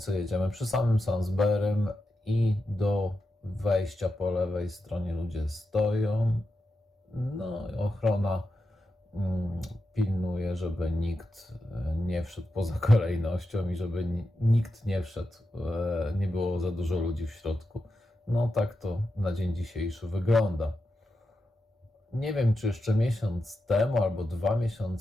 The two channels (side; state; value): both; normal; correlation 0.89